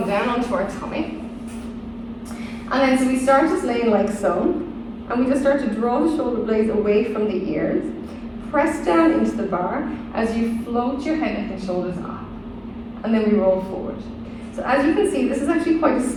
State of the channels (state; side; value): identical; both; correlation 1.00